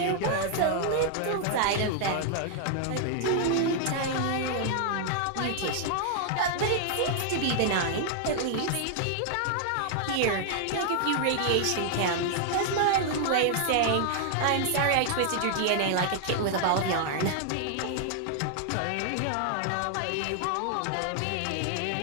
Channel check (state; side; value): different; both; correlation 0.00